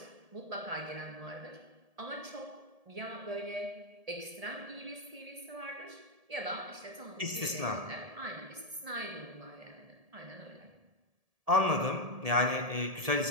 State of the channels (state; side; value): late; left; 1.7 ms